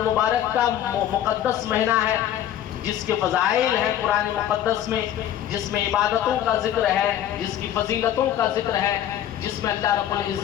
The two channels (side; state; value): right; quieter; 11.2 dB